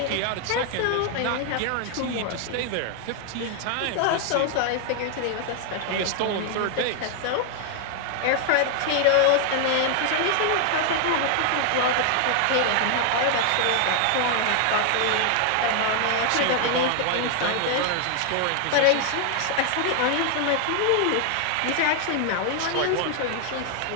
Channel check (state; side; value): different; both; correlation 0.00